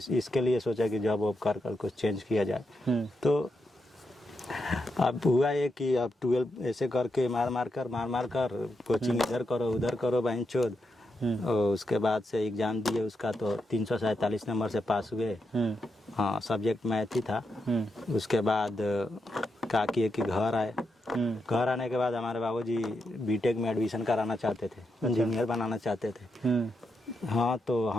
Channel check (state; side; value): normal; both; correlation 0.84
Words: लिए सोचा कि जॉब वॉब कर कुछ चेंज किया जाए। तो अब हुआ ये कि अब 12 ऐसे करके मार कर कोचिंग इधर करो उधर करो बहन चोद। और उसके बाद से एग्जाम दिए उसका तो 347 नंबर से पास हुए। हाँ, सब्जेक्ट मैथ ही था। उसके बाद क्या किए कि घर आए। घर आने के बाद हमारे बाबूजी बीटेक में एडमिशन कराना चाहते थे, इंजीनियर बनाना चाहते थे। हाँ, तो